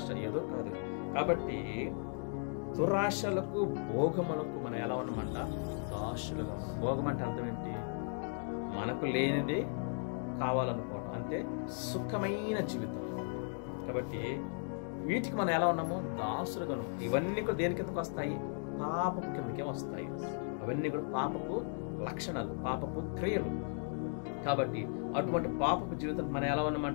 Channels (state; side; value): silent; right; 54 dB below the other